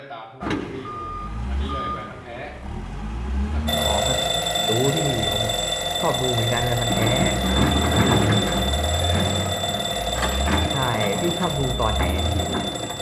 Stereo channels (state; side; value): identical; both; correlation 1.00